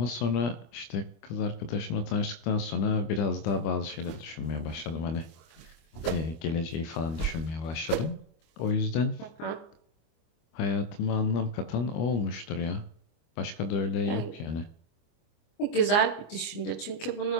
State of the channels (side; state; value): right; late; 25 ms